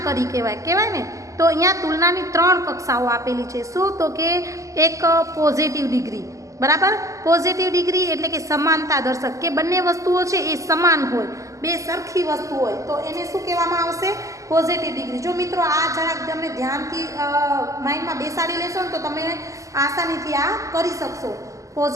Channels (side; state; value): left; late; 0.16 ms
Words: કરી કહેવાય ને. તો અહીંયા તુલનાની 3 કક્ષાઓ આપેલી છે. શું? તો કે એક પોઝિટિવ ડિગ્રી, બરાબર. પોઝિટિવ ડિગ્રી એટલે કે સમાનતા દર્શક, કે બંને વસ્તુઓ છે એ સમાન હોય, બે સરખી વસ્તુ હોય તો એને શું કહેવામાં આવશે? Positive degree. જો મિત્રો આ જરાક તમે ધ્યાનથી માઇન્ડમાં બેસાડી લેશો ને તો તમે આસાનીથી આ કરી શકશો.